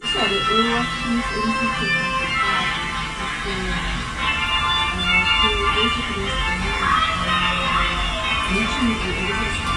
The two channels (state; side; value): identical; both; correlation 1.00